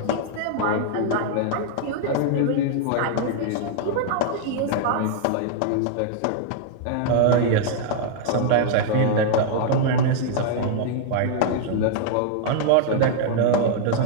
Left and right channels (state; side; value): different; both; correlation -0.01